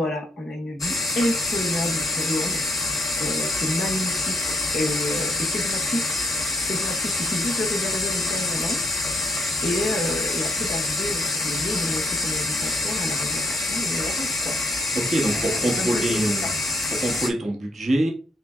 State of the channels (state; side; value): normal; both; correlation 0.70